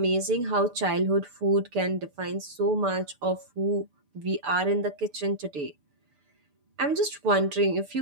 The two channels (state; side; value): late; left; 6.8 ms